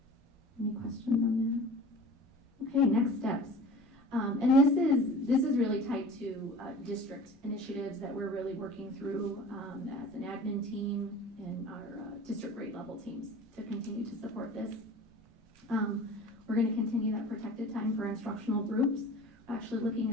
Any questions on that? Okay, next steps. And this is really tied to district initiatives that we're really working through as an admin team and our district grade level teams to continue to support this. We're going to continue that protected time for instructional groups. We're actually looking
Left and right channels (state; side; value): normal; both; correlation 0.41